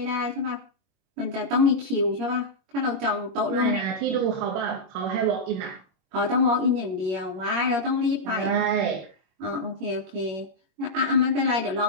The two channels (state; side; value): late; left; 21 ms